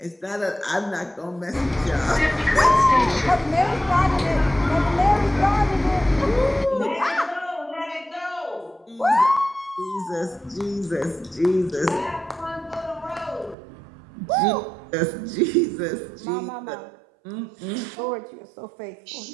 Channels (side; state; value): left; drops out; at 13.6 s